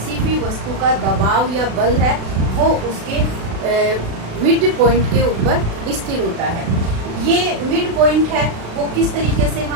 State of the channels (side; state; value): left; late; 36 ms